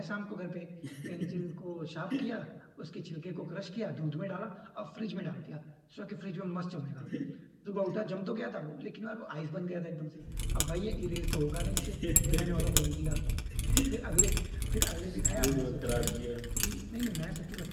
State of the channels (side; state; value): both; identical; correlation 1.00